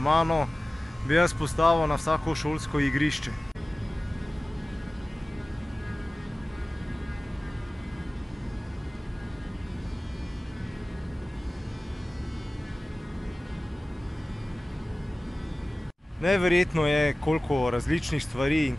bi jaz postavil na vsako šolsko igrišče. Neverjetno je, koliko različnih stvari in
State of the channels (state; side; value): normal; both; correlation 0.97